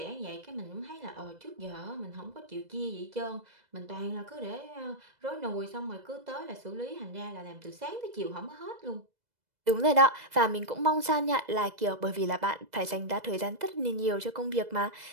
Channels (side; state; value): left; late; 2.0 ms